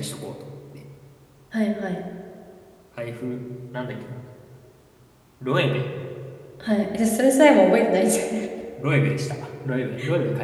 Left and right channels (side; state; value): both; identical; correlation 1.00